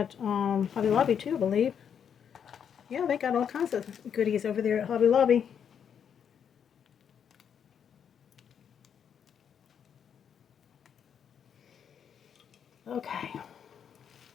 Hobby Lobby too, I believe. Yeah, they got all kinds of goodies over there at Hobby Lobby. Okay.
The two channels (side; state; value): right; quieter; 7.9 dB